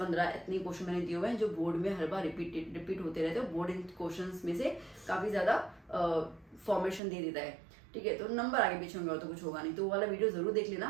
इतने क्वेश्चन मैंने दिए हुए हैं जो बोर्ड में हर बार रिपीट होते रहते हैं। बोर्ड इन क्वेश्चंस में से काफ़ी ज़्यादा फॉर्मेशन दे देता है, ठीक है। तो नंबर आगे पीछे होंगे और तो कुछ होगा नहीं, तो वो वाला वीडियो जरूर देख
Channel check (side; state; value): left; drops out; at 7.0 s